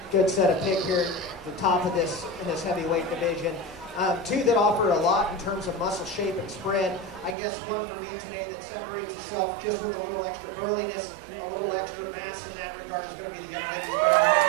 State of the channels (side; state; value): left; drops out; at 7.4 s